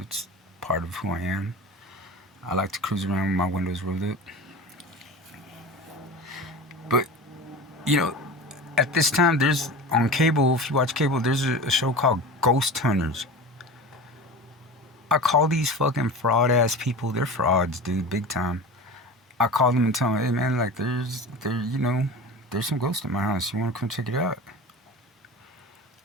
it's part of who I am. I like to cruise around with my windows rolled up. But you know, at this time, there's on cable. If you watch cable, there's a show called Ghost Hunters. I call these fucking fraud ass people. They're frauds, dude, big time. I call them and tell them, hey man, like you know, there's some ghosts in my house. You want to come check it out?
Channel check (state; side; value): normal; both; correlation 0.32